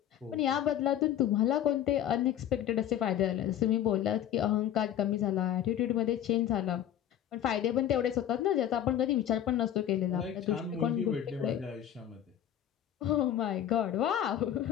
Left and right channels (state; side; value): quieter; right; 10.8 dB